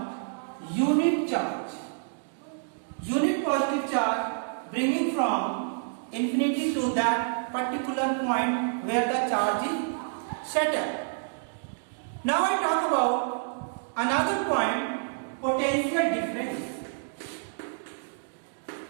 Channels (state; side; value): silent; left; digital silence